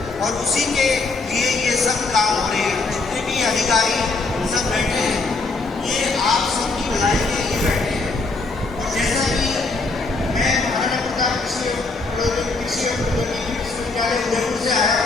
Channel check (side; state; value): right; quieter; 3.7 dB